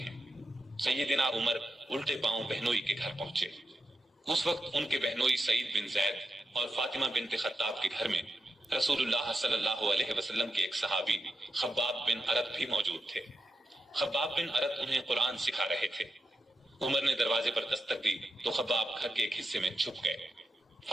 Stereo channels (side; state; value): both; normal; correlation 0.86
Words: ہیں۔ سیدنا عمر الٹے پاؤں بہنوئی کے گھر پہنچے۔ اس وقت ان کے بہنوئی سعید بن زید اور فاطمہ بنت خطاب کے گھر میں رسول اللہ صلی اللہ علیہ وسلم کے ایک صحابی خباب بن ارت بھی موجود تھے۔ خباب بن ارت انہیں قرآن سکھا رہے تھے۔ عمر نے دروازے پر دستک دی تو خباب گھر کے ایک حصے میں چھپ گئے۔